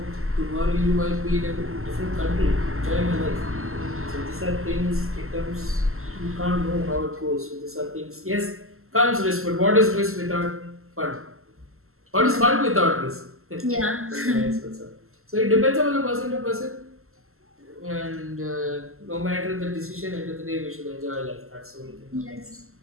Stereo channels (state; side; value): late; left; 0.62 ms